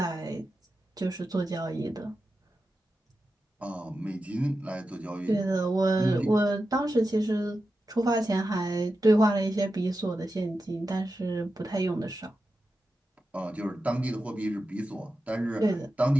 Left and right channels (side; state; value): both; normal; correlation 0.91